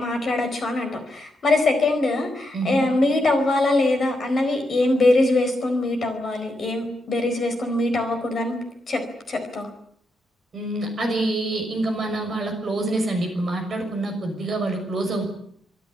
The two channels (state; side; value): normal; both; correlation 0.81